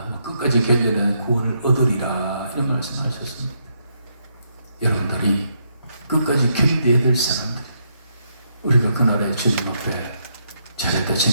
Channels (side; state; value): both; inverted; correlation -0.77